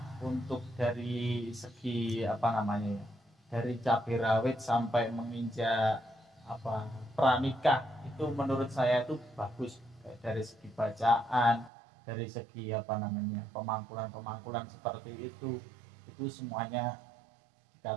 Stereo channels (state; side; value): drops out; left; at 11.7 s